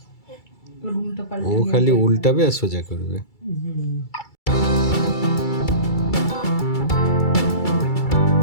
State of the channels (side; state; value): right; late; 2.3 ms